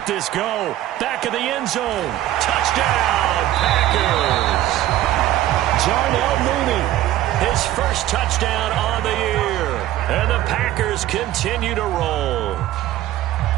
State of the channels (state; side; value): quieter; left; 13.9 dB